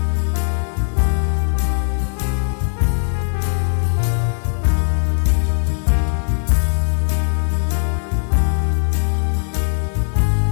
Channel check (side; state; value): right; silent; digital silence